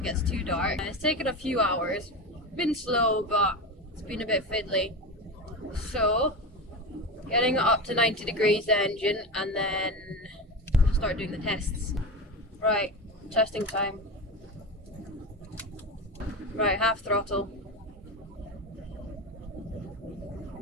gets too dark. It's taken a few hours, been slow, but it's been a bit fiddly. So, getting it up to 90 degrees the engine, and then start doing the tests. Right, testing time. Right, half throttle.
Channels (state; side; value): normal; both; correlation 0.22